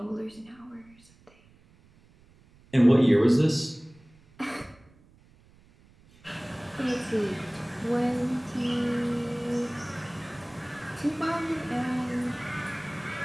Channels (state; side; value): noise; right; rumble, 28 dB below the sound